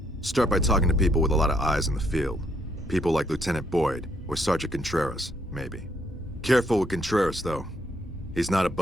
Start by talking to people with a lot of eyes in the field. People like Lieutenant Boyd, or Sergeant Contreras, maybe. Careful with Contreras, though. He's not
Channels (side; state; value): both; normal; correlation 0.72